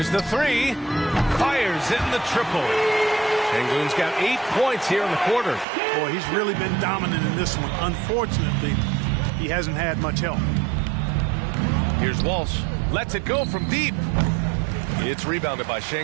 the 3. Fires in the triple. Şengün's got 8 points here in the quarter. Boy, he's really been dominant in this one. Unfortunately, he hasn't had much help. Here's Walsh. Lets it go from deep. It's rebounded by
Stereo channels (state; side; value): drops out; left; at 5.7 s